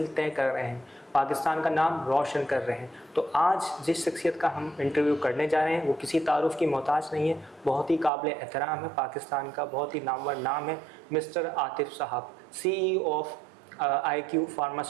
तय कर रहे हैं, पाकिस्तान का नाम रोशन कर रहे हैं। तो आज जिस शख्सियत का हम इंटरव्यू करने जा रहे हैं वो किसी तारुफ की मोहताज नहीं है, बहुत ही काबिल एहतराम है, पाकिस्तान का बहुत ही नामवर नाम है मिस्टर आतिफ साहब, CEO of IQ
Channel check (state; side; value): drops out; left; at 8.1 s